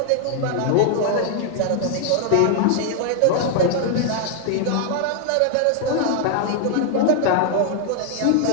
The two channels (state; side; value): different; both; correlation 0.00